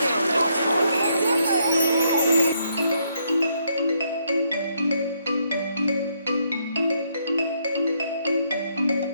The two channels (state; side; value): inverted; both; correlation -0.74